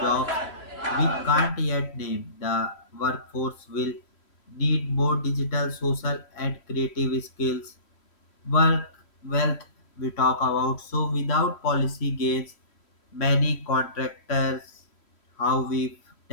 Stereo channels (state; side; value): late; right; 3.1 ms